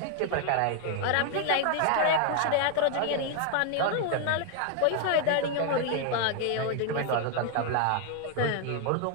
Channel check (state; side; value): different; both; correlation 0.00